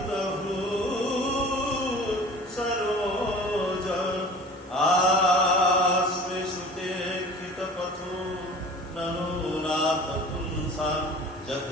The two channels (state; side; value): normal; both; correlation 0.42